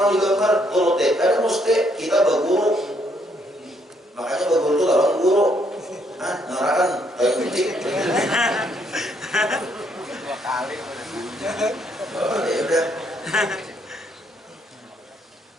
digambar turut ada mesti kita berguru. Makanya berguru itu lawan guru. Ngarakan kayak penting. 2 kali. Oh, ya udah.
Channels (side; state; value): both; normal; correlation 0.71